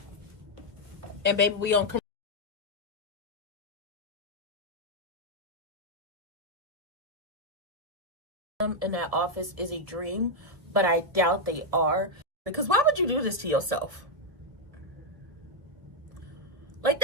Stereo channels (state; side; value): late; left; 1.5 ms